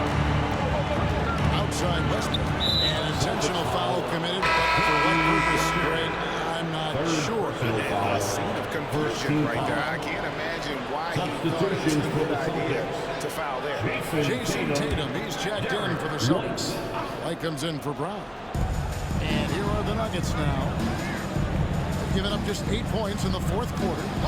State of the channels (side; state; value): both; identical; correlation 1.00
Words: Outside Westbrook. An intentional foul committed, but for what purpose, Greg, I'm not sure. A scene of conversion right there. I can't imagine why he thought it was a good idea to foul there. Jason Tatum, he's checked in for the Celtics. Light comes in for Brown. And here are the Nuggets now. Giving up just 8 points in the fourth quarter.